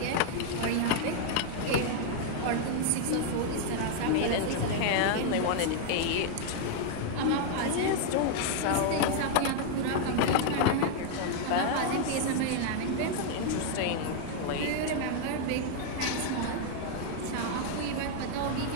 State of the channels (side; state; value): both; different; correlation 0.00